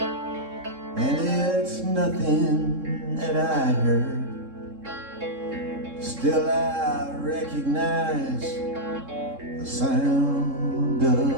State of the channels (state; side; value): late; left; 3.7 ms